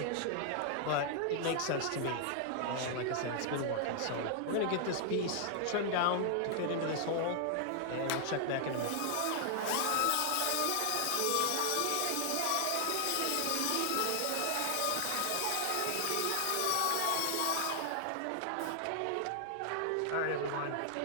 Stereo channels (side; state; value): both; different; correlation 0.00